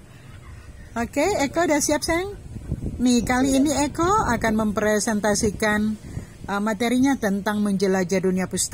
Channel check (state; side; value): identical; both; correlation 1.00